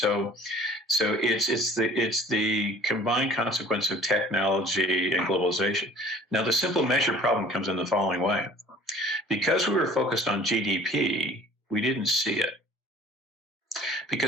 it's the combined consequence of technology and globalization. Now, the simple measure problem comes in the following way. Because we were focused on GDP, we didn't see it.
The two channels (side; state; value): both; normal; correlation 0.49